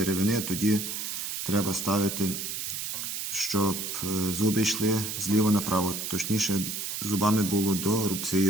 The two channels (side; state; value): right; noise; hiss, 4 dB below the sound